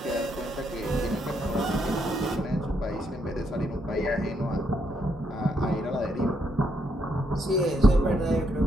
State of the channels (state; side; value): normal; both; correlation 0.76